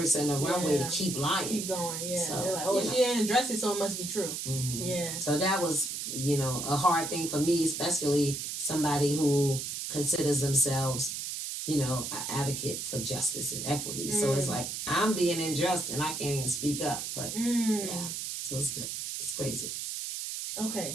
a runway to keep lying. Keep going, yeah. So, they're like, she didn't address it, so it must be true. Mm-hmm. Yeah. So that was, a hard thing for me, especially somebody who considers themselves, an advocate for justice and equity. So it's like, I'm being unjust and I can't even speak up. But yeah, so it's good. It's crazy.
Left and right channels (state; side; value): noise; right; hiss, 5 dB below the sound